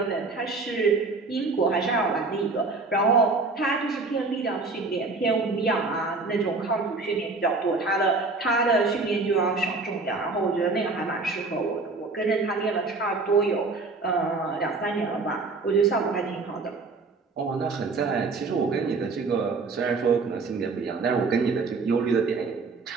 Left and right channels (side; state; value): left; quieter; 3.9 dB